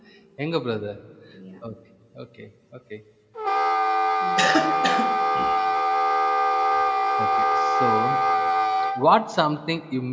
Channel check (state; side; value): identical; both; correlation 1.00